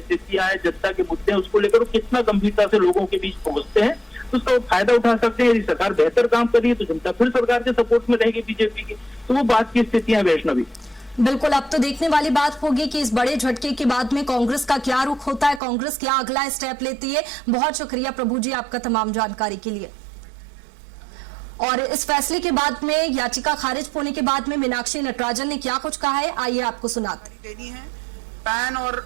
हैं, जनता के मुद्दे हैं, उसको लेकर कितना गंभीरता से लोगों के बीच पहुंचते हैं, तो उसका फायदा उठा सकते हैं। यदि सरकार बेहतर काम कर रही है तो जनता फिर सरकार के सपोर्ट में रहेगी बीजेपी की। तो वो बात की स्थितियां वैष्णवी। बिल्कुल, अब तो देखने वाली बात होगी कि इस बड़े झटके के बाद में कांग्रेस का क्या रुख होता है, कांग्रेस क्या अगला स्टेप लेती है। बहुत शुक्रिया प्रभु जी आपका तमाम जानकारी के लिए। और इस फैसले के बाद में, याचिका खारिज होने के बाद में मीनाक्षी नटराजन ने क्या कुछ कहा है, आइए आपको सुनाते। देनी है पैन और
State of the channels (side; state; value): left; drops out; at 15.6 s